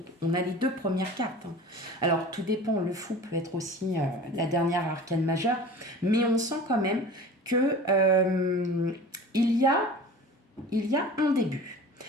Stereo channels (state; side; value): normal; both; correlation 0.39